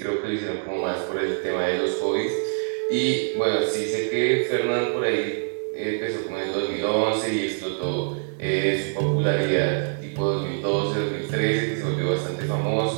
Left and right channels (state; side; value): silent; left; 62 dB below the other